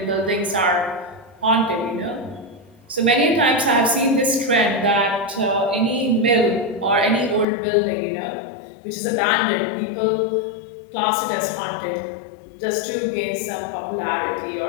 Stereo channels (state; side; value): drops out; right; at 7.5 s